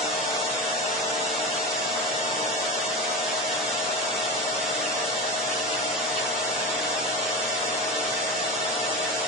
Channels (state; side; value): normal; both; correlation 0.24